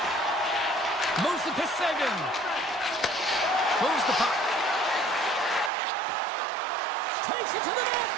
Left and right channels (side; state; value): left; drops out; at 5.7 s